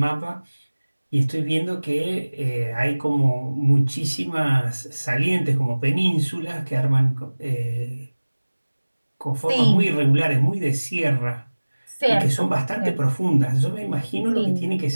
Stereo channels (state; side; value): inverted; both; correlation -1.00